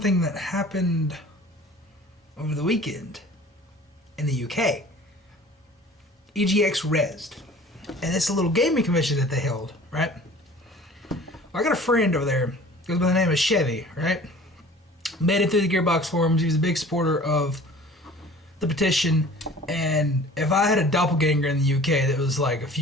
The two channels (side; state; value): both; normal; correlation 0.46